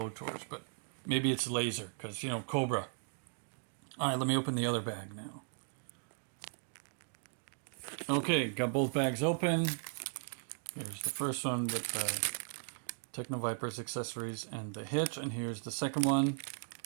but maybe it's laser because, you know, Cobra. All right, let me open the other bag now. Okay, got both bags open. Here's the first one with the Techno Viper's accessories and the hitch, and here's the second one,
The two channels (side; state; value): left; silent; 53 dB below the other